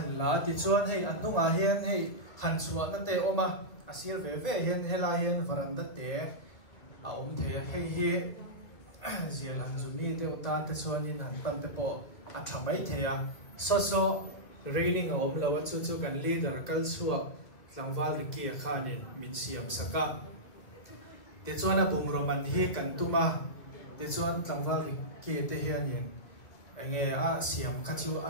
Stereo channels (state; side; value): late; right; 2.2 ms